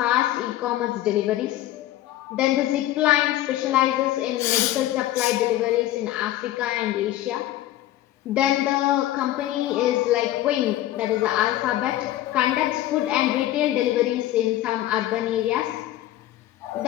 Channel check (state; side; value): quieter; right; 14.4 dB